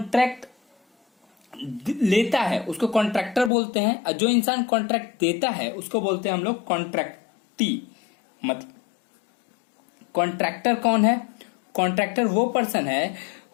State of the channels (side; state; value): right; drops out; at 3.5 s